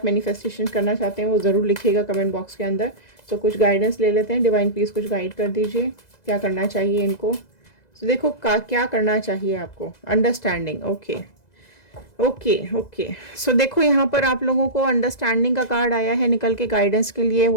मैनिफेस्टेशन करना चाहते हैं वो ज़रूर लिखिएगा कमेंट बॉक्स के अंदर। सो कुछ गाइडेंस ले लेते हैं, डिवाइन प्लीज़ कुछ गाइड कर दीजिए, क्या करना चाहिए इनको। सो देखो क्या करना चाहिए आपको, अंडरस्टैंडिंग। ओके ओके ओके, सो देखो यहाँ पर आप लोगों को अंडरस्टैंडिंग का कार्ड आया है निकल के गाइडेंस के लिए।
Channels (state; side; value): late; right; 2.0 ms